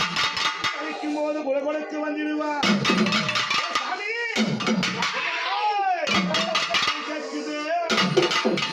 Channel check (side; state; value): both; identical; correlation 1.00